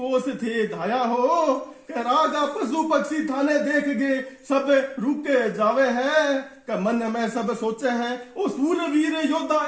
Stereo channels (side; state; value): both; identical; correlation 1.00